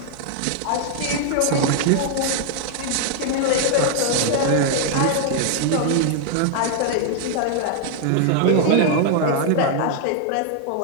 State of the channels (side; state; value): both; different; correlation 0.00